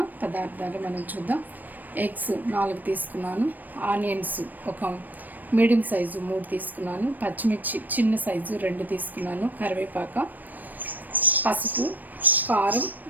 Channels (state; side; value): late; left; 0.087 ms